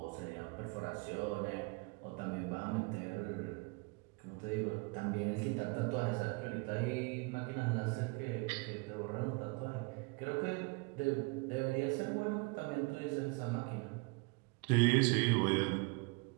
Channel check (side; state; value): left; quieter; 28.8 dB